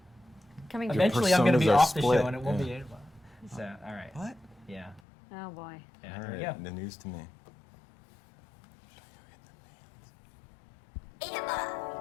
coming true. Eventually, I'm going to be personas are off the split. show, and it won't be Yeah. Adabot. So, all right. What? Yeah. Oh boy. Yeah. All Here we right, go. the news to me.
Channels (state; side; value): drops out; right; at 5.0 s